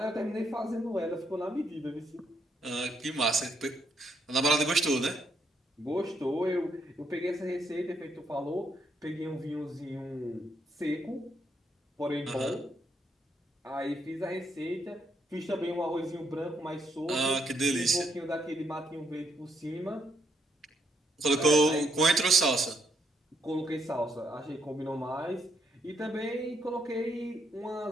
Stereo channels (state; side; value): normal; both; correlation 0.75